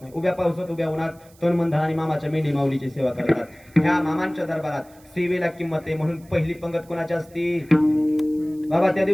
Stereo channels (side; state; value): right; noise; hiss, 28 dB below the sound